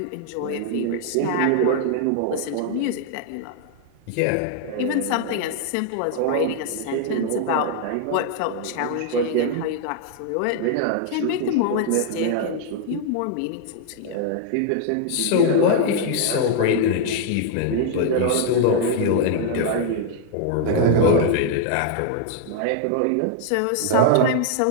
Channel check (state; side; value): different; both; correlation 0.00